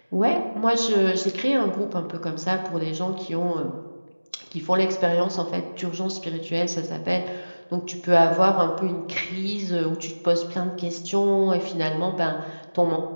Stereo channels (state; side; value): inverted; both; correlation -1.00